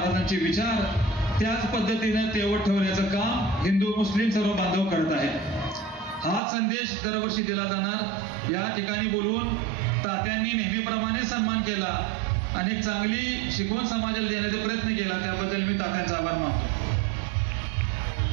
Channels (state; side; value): drops out; left; at 6.4 s